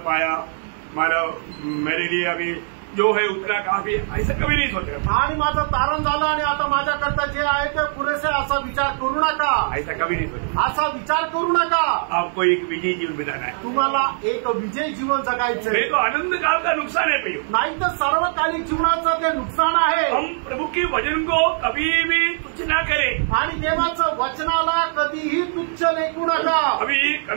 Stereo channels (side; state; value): left; silent; 65 dB below the other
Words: पाया, मानव मेरे लिए अभी जो है उतना काफी, ऐसा कभी नहीं सोचा। आणि माझं तारण झालं आणि आता माझ्याकरता जे आहे ते पुरेसे, असा विचार करू नका, ऐसा कभी नहीं सोचा। असा विचार करू नका। आपको एक विजयी जीवन बिताना है, तुम्हाला एक विजयी जीवन जगायचं नहीं तो अनंत काल का नुकसान है भैया। नाही तर सर्वकालिक जीवनाचं ते नुकसान आहे। हम प्रभु के वचन को कभी भी तुच्छ ना करें, आणि देवाचं वचनाला कधीही तुच्छ लेखू नका। अभी